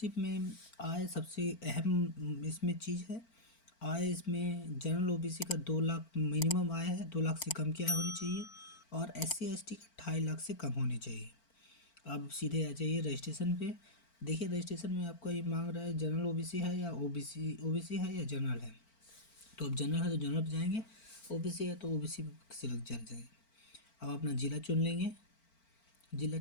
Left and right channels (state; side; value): late; right; 4.4 ms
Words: में आय सबसे अहम इसमें चीज़ है। आय इसमें जनरल ओबीसी का 2 लाख मिनिमम आय है, 2 लाख से कम की आय होनी चाहिए और एससी एसटी का 2.5 लाख से कम होनी चाहिए। अब सीधे आ जाइए रजिस्ट्रेशन पे। देखिए रजिस्ट्रेशन में आपका ये मांग रहा है जनरल ओबीसी है या ओबीसी है या जनरल है। तो अब जनरल है तो जनरल पे जाएंगे, ओबीसी है तो ओबीसी सिलेक्ट कर जाएंगे। अब अपना ज़िला चुन लेंगे। ज़िला